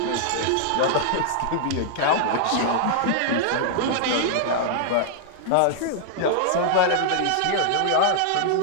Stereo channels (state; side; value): different; both; correlation -0.01